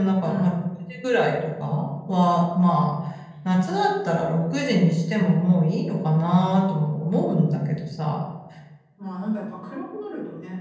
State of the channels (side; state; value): both; identical; correlation 1.00